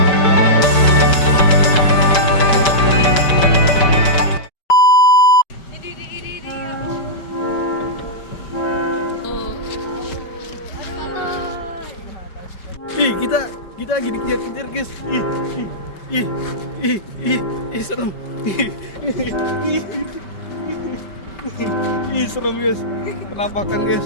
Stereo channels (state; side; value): late; right; 5.2 ms